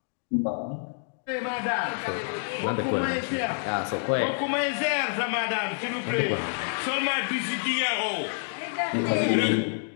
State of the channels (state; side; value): silent; right; digital silence